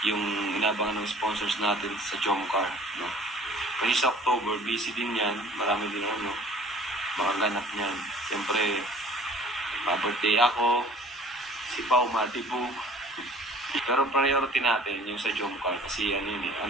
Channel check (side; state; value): both; normal; correlation 0.50